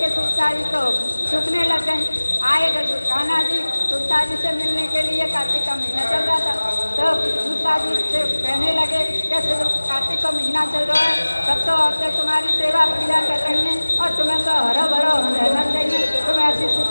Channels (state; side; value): inverted; both; correlation -1.00